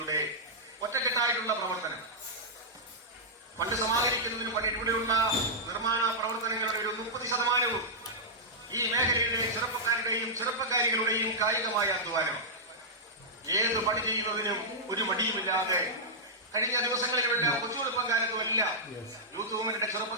ഒറ്റക്കെട്ടായിട്ടുള്ള പ്രവർത്തനം ഫണ്ട് സമാഹരിക്കുന്നതിന് പണി ഇവിടെയുള്ള നിർമ്മാണ പ്രവർത്തനങ്ങളുടെ ഒരു 30% ഈ മേഖലയിലെ ചെറുപ്പക്കാരുടെയും ചെറുപ്പക്കാരികളുടെയും കായികമായ അധ്വാനം. ഏത് പണി ചെയ്യുന്നതിനും ഒരു മടിയുമില്ലാതെ കഴിഞ്ഞ ദിവസങ്ങളിലെല്ലാം കൊച്ചുവെളുപ്പം കാലത്തുമെല്ലാം യൂത്ത് മൂവ്മെന്റിന്റെ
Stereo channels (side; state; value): both; normal; correlation -0.11